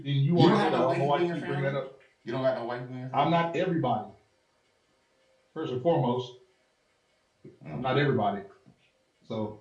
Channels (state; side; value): identical; both; correlation 1.00